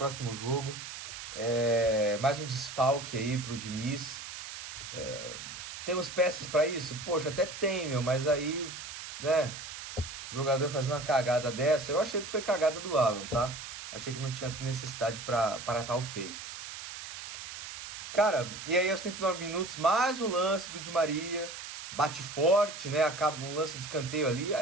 jogo. Mais um desfalque aí pro Diniz. Temos peças para isso? Poxa, até tem, meu. Mas aí, né? O jogador fazendo uma cagada dessa. Eu achei que foi cagada do Alan, tá? Achei que não tinha necessidade para tal feito. Cara, e aí aos 39 minutos, mais um lance do Di Maria. Bate forte, né? Acaba um lance de escanteio ali.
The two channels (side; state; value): right; noise; hiss, 10 dB below the sound